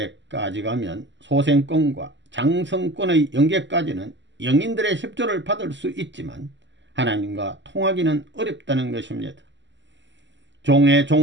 가면 소생권과 장성권의 연계까지는 영인들의 협조를 받을 수 있지만 하나님과 통하기는 어렵다는 것입니다. 종의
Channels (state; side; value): late; left; 0.53 ms